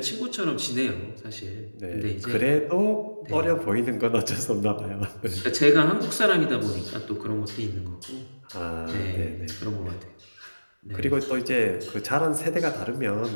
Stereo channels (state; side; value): inverted; both; correlation -1.00